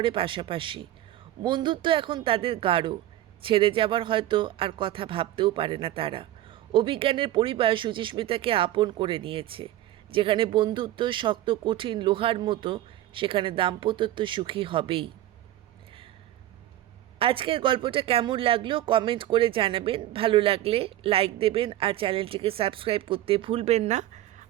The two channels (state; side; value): quieter; left; 14.0 dB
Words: পাশাপাশি। বন্ধুত্ব এখন তাদের গাঢ়, ছেড়ে যাবার হয়তো আর কথা ভাবতেও পারে না তারা। অভিজ্ঞানের পরিবার সুচিস্মিতাকে আপন করে নিয়েছে। যেখানে বন্ধুত্ব শক্ত কঠিন লোহার মতো, সেখানে দাম্পত্য সুখী হবেই। আজকের গল্পটা কেমন লাগলো কমেন্ট করে জানাবেন। ভালো লাগলে লাইক দেবেন, আর চ্যানেলটিকে সাবস্ক্রাইব করতে ভুলবেন না,